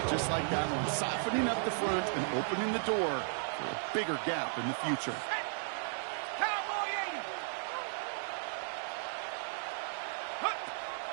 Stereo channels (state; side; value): silent; left; digital silence